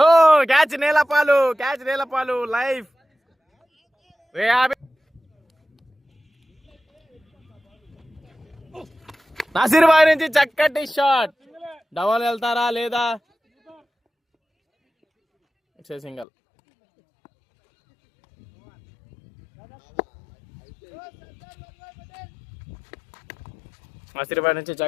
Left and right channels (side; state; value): right; drops out; at 16.2 s